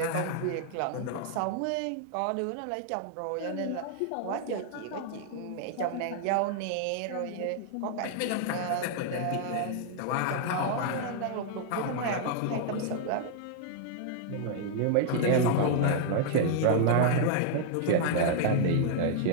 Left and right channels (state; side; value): different; both; correlation 0.00